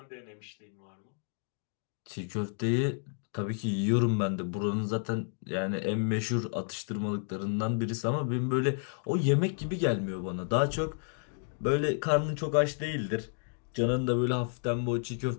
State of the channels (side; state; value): right; silent; 57 dB below the other